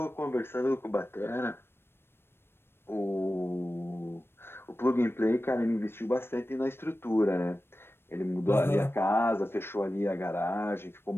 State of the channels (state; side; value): late; right; 0.11 ms